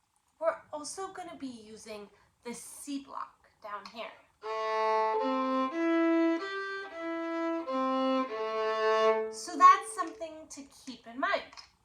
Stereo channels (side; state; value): both; identical; correlation 1.00